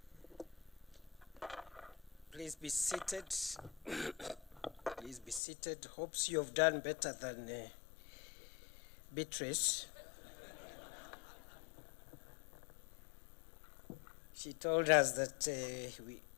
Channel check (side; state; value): right; drops out; at 5.4 s